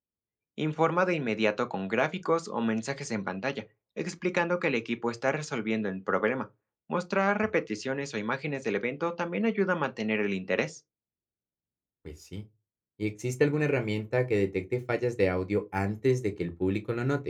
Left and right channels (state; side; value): identical; both; correlation 1.00